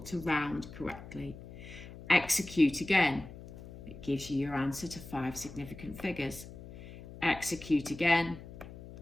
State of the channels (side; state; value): left; noise; hum, 15 dB below the sound